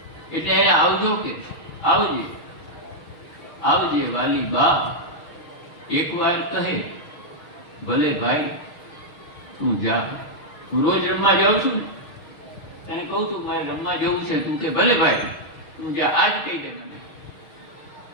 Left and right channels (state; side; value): late; right; 6.4 ms